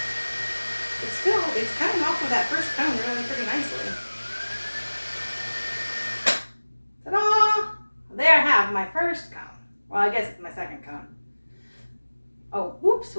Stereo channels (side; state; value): both; inverted; correlation -1.00